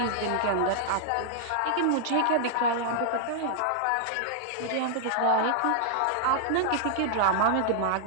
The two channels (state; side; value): different; both; correlation -0.01